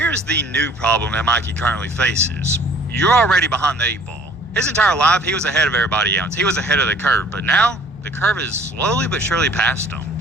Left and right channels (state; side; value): normal; both; correlation 0.54